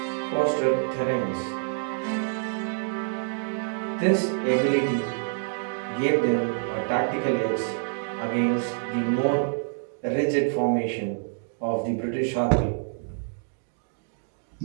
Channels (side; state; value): left; silent; 60 dB below the other